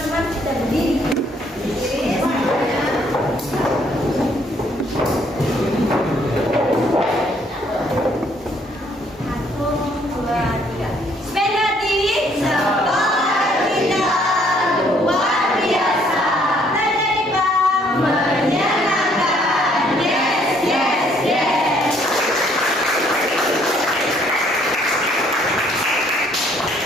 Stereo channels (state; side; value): normal; both; correlation 0.65